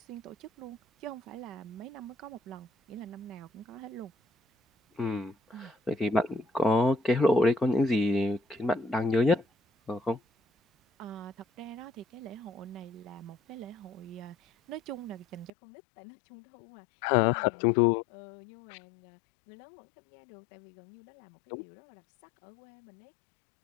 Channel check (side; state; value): right; drops out; at 15.5 s